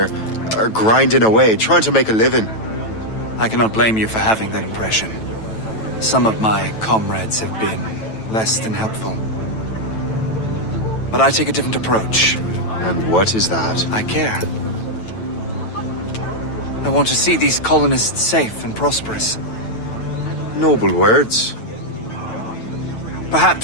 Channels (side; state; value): right; late; 9.1 ms